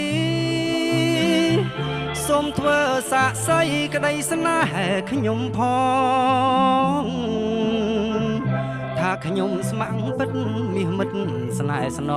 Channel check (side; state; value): right; noise; rumble, 26 dB below the sound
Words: សូមធ្វើសាក្សីក្តីស្នេហ៍ខ្ញុំផងថាខ្ញុំស្ម័គ្រពិតមាសមិត្តស្នេហ៍ស្ន